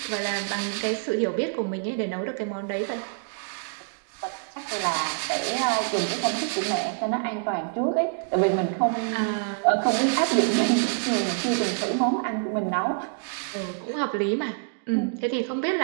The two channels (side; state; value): left; silent; digital silence